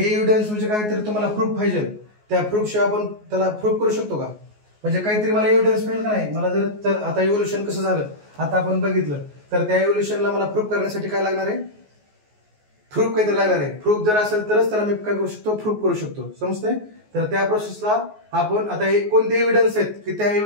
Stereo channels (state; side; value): late; left; 14 ms